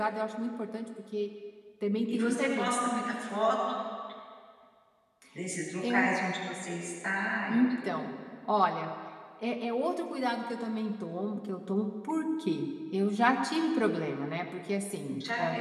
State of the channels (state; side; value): identical; both; correlation 1.00